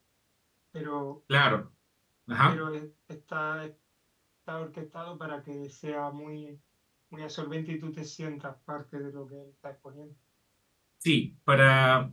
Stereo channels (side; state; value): both; identical; correlation 1.00